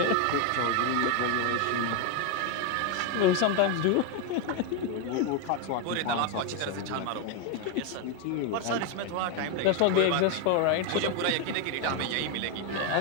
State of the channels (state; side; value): different; both; correlation 0.01